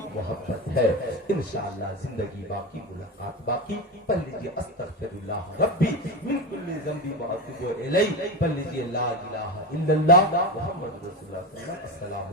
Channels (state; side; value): normal; both; correlation 0.20